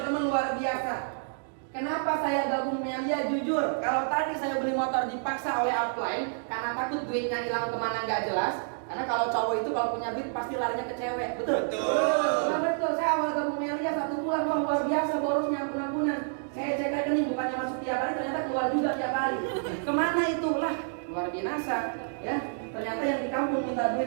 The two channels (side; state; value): left; silent; digital silence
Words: luar biasa. Kenapa saya gabung Melia? Jujur, kalau tadi saya beli motor dipaksa oleh upline karena takut duitnya hilang kemana nggak jelas. Karena kalau cowok itu kalau punya duit pasti larinya ke cewek, betul? Nah, betul. Saya awal gabung Melia 1 bulan, wah luar biasa borosnya ampun-ampunan. Saya cek rekening bukannya masuk tiap hari, ternyata keluar juga tiap hari. Kemana itu? Lah, luar biasa ya. Ternyata yang di kampung minta duit